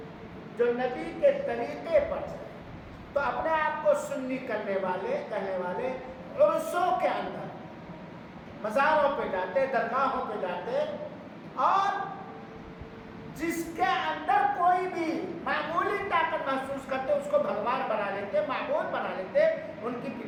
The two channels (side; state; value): both; identical; correlation 1.00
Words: جو نبی کے طریقے پر چلے۔ تو اپنے آپ کو سنی کہنے والے عرصوں کے اندر مزاروں پہ جاتے، درگاہوں پہ جاتے، اور جس کے اندر کوئی بھی معمولی طاقت محسوس کرتے اس کو بھگوان بنا لیتے، معبود بنا لیتے۔ ان کی